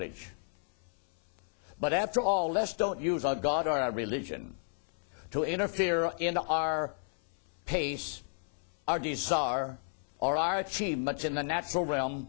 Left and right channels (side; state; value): right; silent; 56 dB below the other